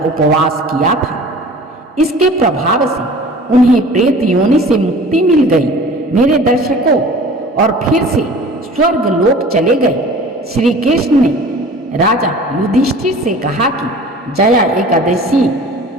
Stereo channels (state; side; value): normal; both; correlation 0.44